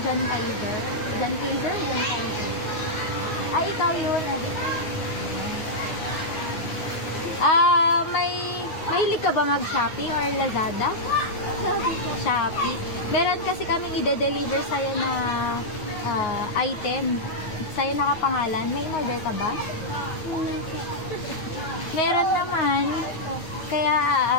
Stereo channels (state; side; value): late; right; 9.5 ms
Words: John Kaiser? John Kaiser? John Kaiser. Ay, ikaw yun. Mahilig ka ba mag-Shopee or Lazada? Shopee po. Shopee. Meron kasi kami i-deliver sa'yo na item. Sa'yo nakapangalan. May in-order ka ba? Meron naman. Kaya